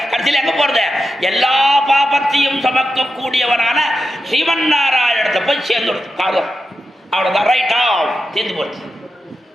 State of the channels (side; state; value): both; normal; correlation 0.89